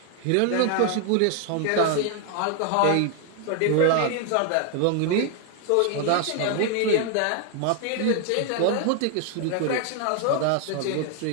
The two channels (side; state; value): both; different; correlation 0.00